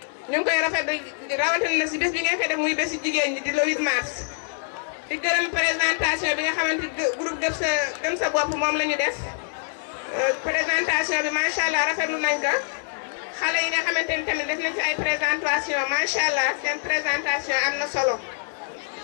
ñu ngi koy rafetlu rawatina na si bés bi ngeen koy def muy bési jigéen ñi di le 8 mars di gërëm présentation bi nga xamante groupe gëm sa bopp moom la ñu def présentation bi macha allah rafetlu nañ ko xale yi nga xamante ni tamit def nañ ci ay présentation macha allah seen présentation am na solo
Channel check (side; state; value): right; silent; digital silence